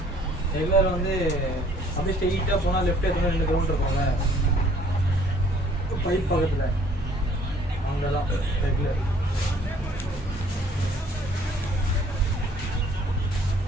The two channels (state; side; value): normal; both; correlation 0.58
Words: ரெகுலர் வந்து அப்படியே ஸ்ட்ரெயிட்டாக போனால் லெஃப்ட் எடுத்துனா 2 கிலோமீட்டர் இருக்கும்ல பைப் பக்கத்தில் அங்கே தான் ரெகுலர்.